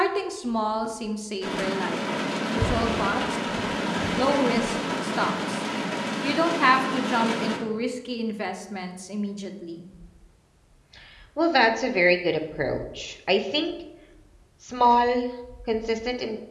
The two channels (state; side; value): identical; both; correlation 1.00